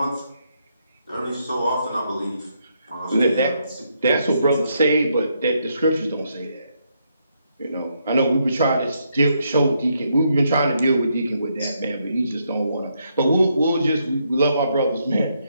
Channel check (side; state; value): both; inverted; correlation -0.77